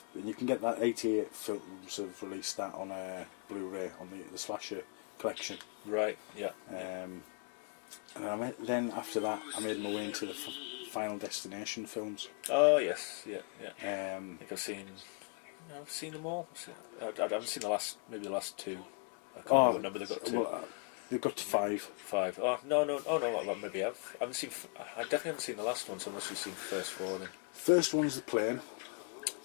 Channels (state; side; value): quieter; right; 39.5 dB